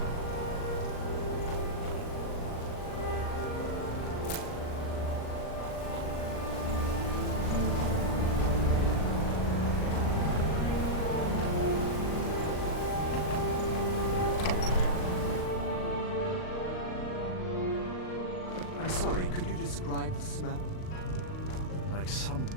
I'm sorry, could you describe the smell? Like some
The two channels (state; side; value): late; right; 39 ms